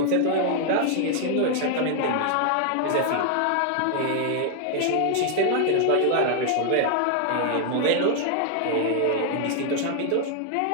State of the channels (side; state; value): both; different; correlation 0.00